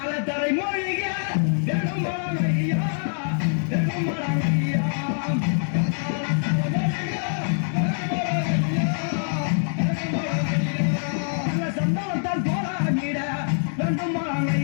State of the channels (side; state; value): right; silent; digital silence